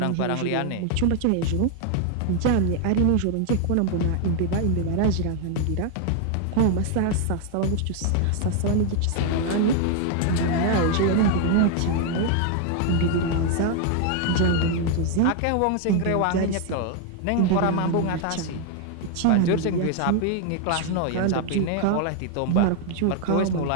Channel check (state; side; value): different; both; correlation 0.00